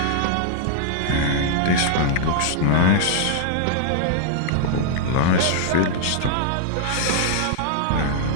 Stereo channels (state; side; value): different; both; correlation 0.00